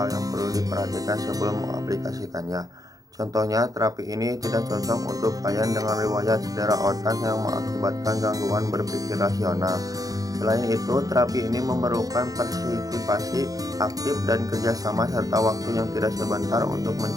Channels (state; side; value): late; left; 0.17 ms